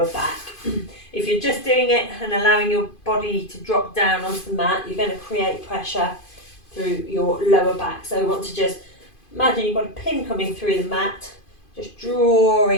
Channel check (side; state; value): right; late; 2.5 ms